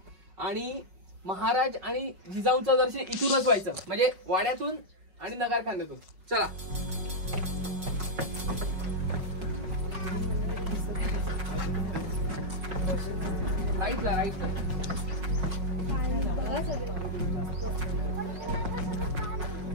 आणि महाराज आणि जिजाऊंचं दर्शन इथूनच व्हायचं, म्हणजे वाड्यातून आणि नगरखान्यातून. चला राईटला.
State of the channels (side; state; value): left; late; 5.4 ms